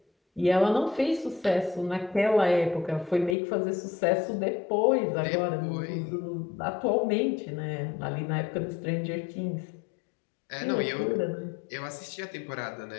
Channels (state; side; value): drops out; right; at 3.4 s